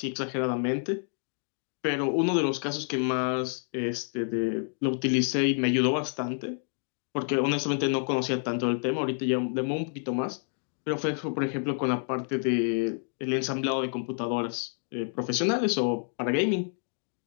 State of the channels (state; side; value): silent; right; 56 dB below the other